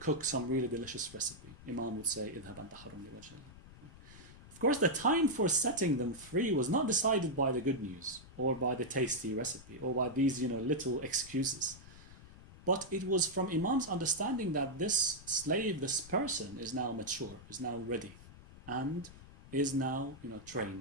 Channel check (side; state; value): left; noise; rumble, 18 dB below the sound